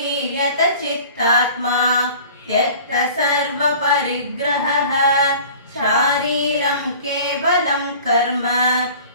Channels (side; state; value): both; inverted; correlation -0.45